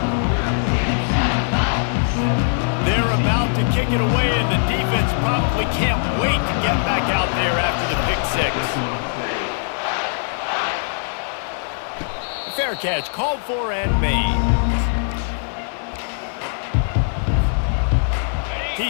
They're about to kick it away, and the defense probably can't wait to get back out there after the pick 6. Fair catch called for and made.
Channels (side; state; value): right; silent; digital silence